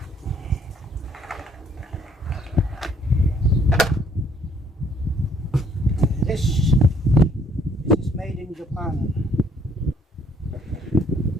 This is made in Japan.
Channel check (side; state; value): both; normal; correlation 0.64